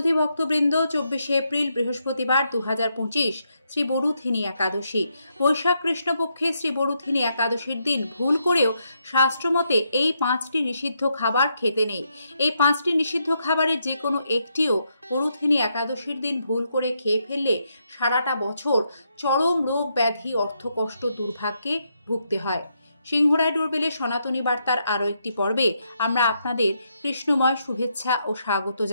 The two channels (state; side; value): inverted; both; correlation -0.79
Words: ভক্তবৃন্দ, 24শে এপ্রিল বৃহস্পতিবার 2025 শ্রী বরুথিনী একাদশী। বৈশাখ কৃষ্ণপক্ষে শ্রী বরুথিনী একাদশীর দিন ভুল করেও শাস্ত্রমতে এই 5টি নিষিদ্ধ খাবার খেতে নেই। এই 5টি নিষিদ্ধ খাবারের যে কোনো একটিও বরুথিনী একাদশীর দিন ভুল করে খেয়ে ফেললে সারাটা বছর চরম রোগ ব্যাধি অর্থকষ্ট দুর্ভাগ্যে ভুগতে হয়। সিংহরায় ডোরবেলের সনাতনী বার্তার আরও একটি পর্বে আমরা আপনাদের কৃষ্ণময় শুভেচ্ছা ও স্বাগত